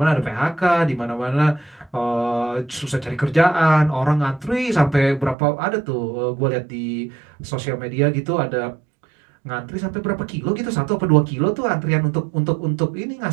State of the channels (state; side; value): drops out; left; at 5.4 s